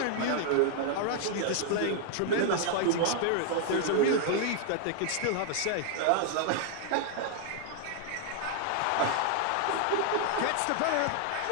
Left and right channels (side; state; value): both; different; correlation 0.00